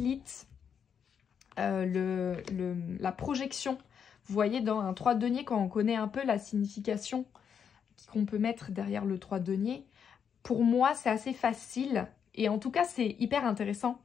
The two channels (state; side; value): quieter; right; 7.5 dB